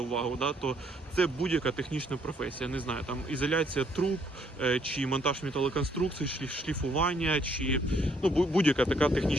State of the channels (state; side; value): normal; both; correlation 0.67